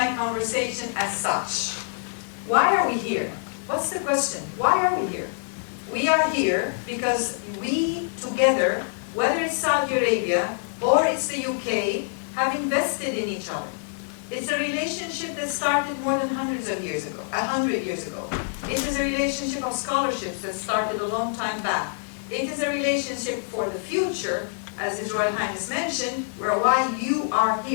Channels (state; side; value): silent; right; digital silence